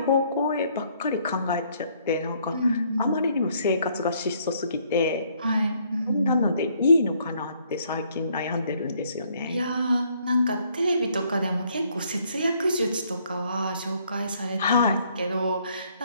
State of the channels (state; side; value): inverted; both; correlation -0.66